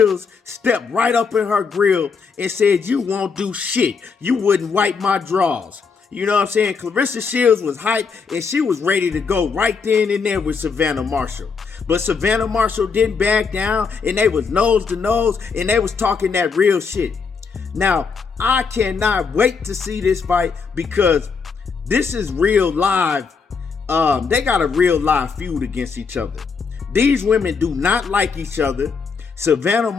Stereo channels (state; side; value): quieter; right; 5.4 dB